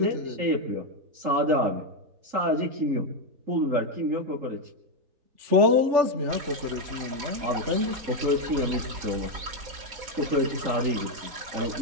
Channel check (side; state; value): left; late; 4.1 ms